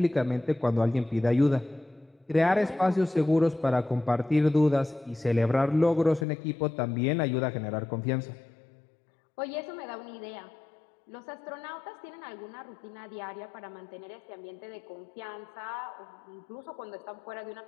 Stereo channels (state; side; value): drops out; right; at 6.2 s